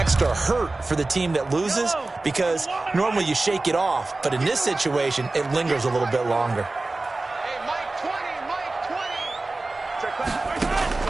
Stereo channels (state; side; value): quieter; left; 3.2 dB